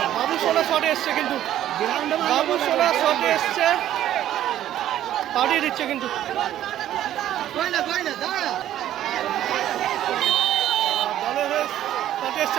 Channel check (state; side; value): quieter; left; 12.2 dB